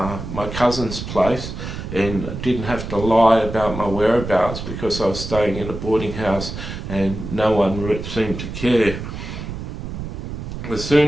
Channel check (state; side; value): noise; right; rumble, 7 dB below the sound